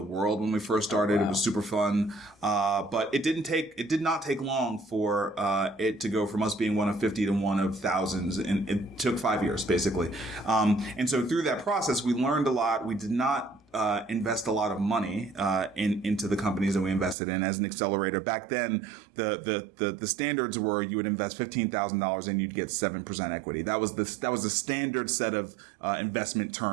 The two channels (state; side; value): drops out; left; at 17.2 s